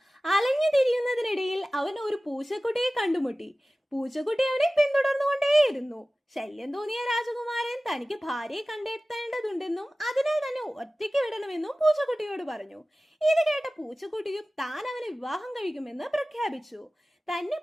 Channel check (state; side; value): normal; both; correlation 0.96